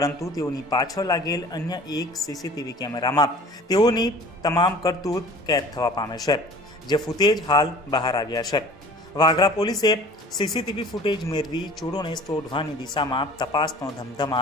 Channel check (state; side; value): normal; both; correlation 0.46